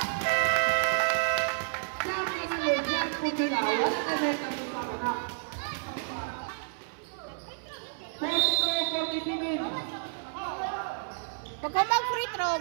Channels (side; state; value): left; silent; 58 dB below the other